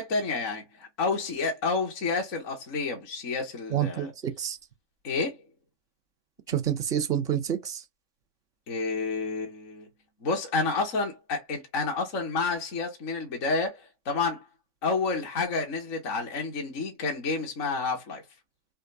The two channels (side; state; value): right; late; 3.5 ms